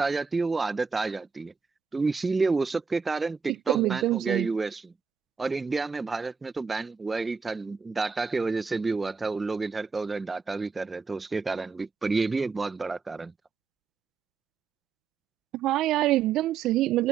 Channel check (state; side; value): quieter; left; 5.7 dB